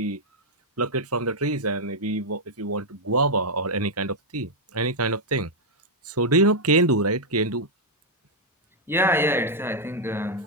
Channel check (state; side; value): normal; both; correlation -0.03